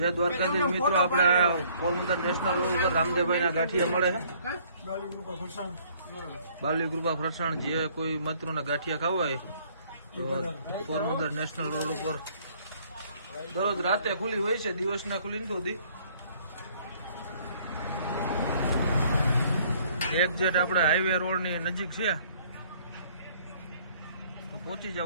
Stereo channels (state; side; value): inverted; both; correlation -0.60